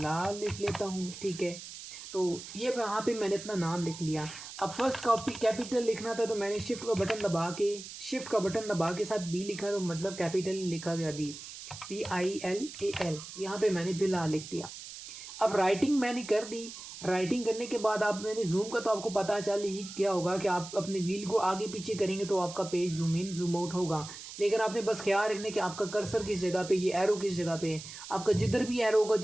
लिख लेता हूँ। ठीक है, तो ये यहाँ पे मैंने अपना नाम लिख लिया। अब फर्स्ट कॉपी कैपिटल लिखना था तो मैंने शिफ्ट का बटन दबा के साथ बी लिखा, तो मतलब कैपिटल लिखा गया बी, Bill, यहाँ पे मैंने बिलाल लिख दिया। अब राइटिंग मैंने कर दी। राइटिंग करने के बाद आप मैंने जूम का, तो आपको पता चल ही क्या होगा कि आप अपने व्हील को आगे पीछे करेंगे तो आपका page zoom in zoom out होगा। लेकिन आपने बस ख्याल रखना कि आपका कर्सर किस जगह पे, ये एरो किस जगह पे है। आपका जिधर भी एरो होगा,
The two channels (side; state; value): right; noise; hiss, 12 dB below the sound